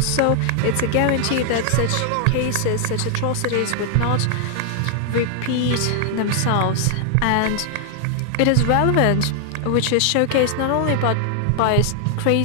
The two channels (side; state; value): both; different; correlation 0.00